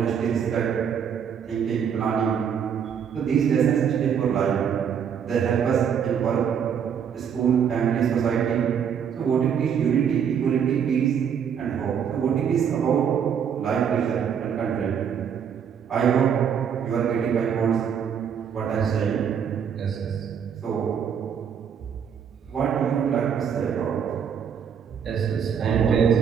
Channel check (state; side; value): quieter; left; 7.7 dB